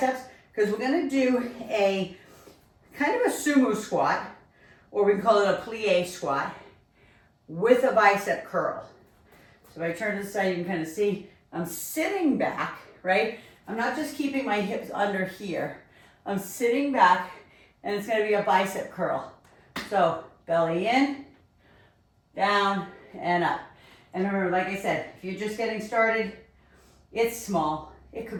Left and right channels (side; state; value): both; identical; correlation 1.00